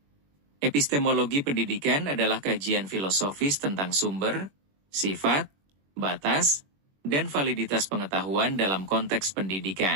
Epistemologi pendidikan adalah kajian filosofis tentang sumber, sifat, batas, dan validitas pengetahuan dalam konteks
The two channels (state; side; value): late; left; 21 ms